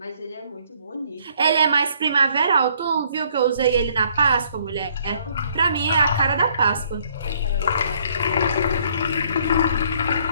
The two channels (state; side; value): inverted; both; correlation -0.64